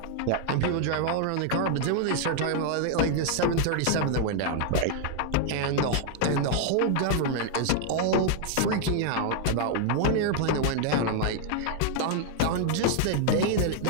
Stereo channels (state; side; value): different; both; correlation 0.00